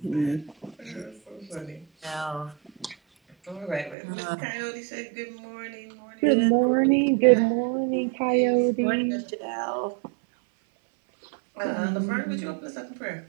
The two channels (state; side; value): drops out; left; at 4.0 s